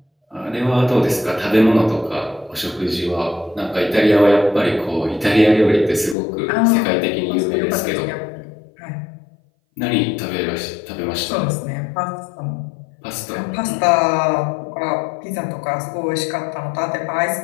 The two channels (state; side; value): drops out; right; at 6.2 s